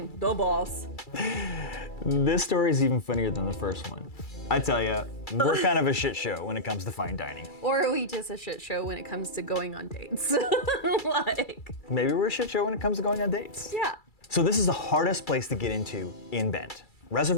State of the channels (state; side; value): late; right; 2.3 ms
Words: boss. This story is even funnier than the first one. I tell ya, we're kind of a shit show when it comes to fine dining. Or are we just a shit show when it comes to going on dates? Maybe we're a shit show when it comes to going on dates. Yeah. So this is the hardest place to get into in Bend.